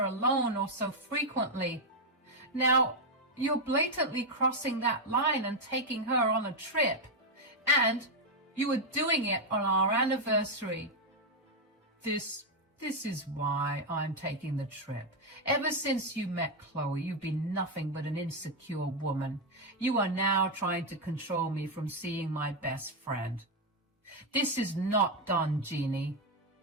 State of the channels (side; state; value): both; normal; correlation 0.02